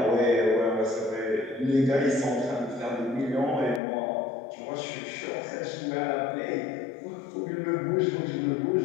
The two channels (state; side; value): drops out; right; at 3.8 s